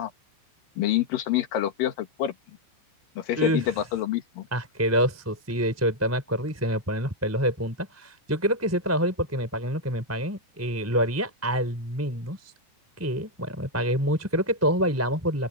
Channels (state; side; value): normal; both; correlation -0.01